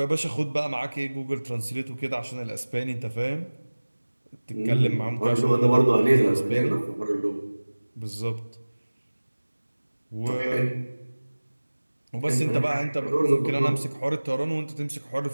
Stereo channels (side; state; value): both; inverted; correlation -1.00